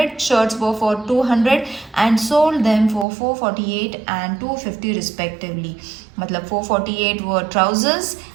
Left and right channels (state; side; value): drops out; left; at 3.1 s